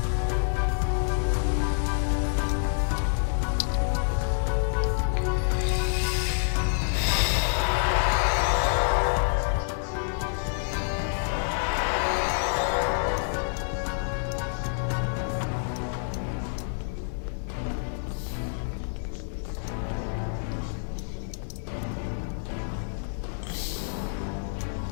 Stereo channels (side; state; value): right; silent; 56 dB below the other